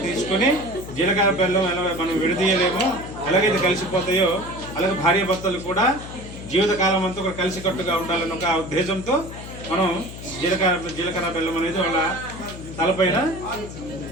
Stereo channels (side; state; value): left; noise; hum, 12 dB below the sound